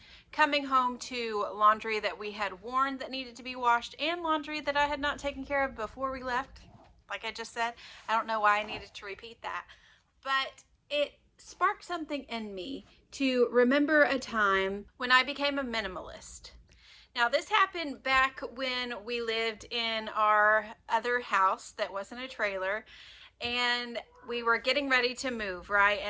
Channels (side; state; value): both; identical; correlation 1.00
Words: coming home to laundry that we had worn that needed to be washed and laundry that I had not taken care of before we left. Like I just said, I don't know why I needed to repeat that, but it sparked something in me to remember a time when I became a minimalist. Now, this happened back when we lived in our other house that wasn't a trailer, and we were getting ready to move, right?